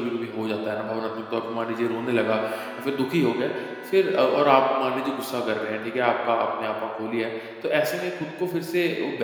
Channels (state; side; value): identical; both; correlation 1.00